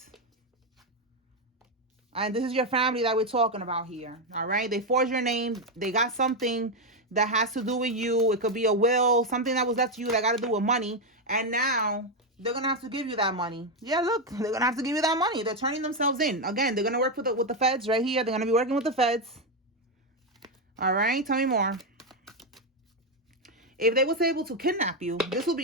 And this is your family that we're talking about here. All right. They forged your name. They got something that has to do with you. It could be a will, something that was left to you that got to do with money. And now they're going to have to give you that money. Yeah, look, they're going to have to give you that money. They're turning themselves in. Again, they're going to work with the feds right here. They're going to be working with the feds. All right. Tell me more. If they was able to kidnap you, this will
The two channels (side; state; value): both; normal; correlation 0.06